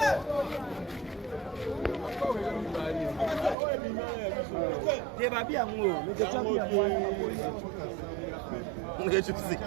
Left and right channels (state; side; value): drops out; left; at 3.6 s